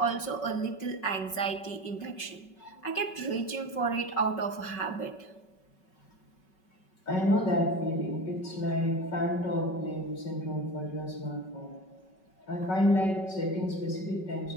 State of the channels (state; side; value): late; right; 5.3 ms